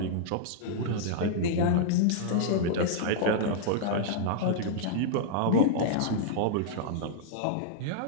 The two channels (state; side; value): different; both; correlation -0.01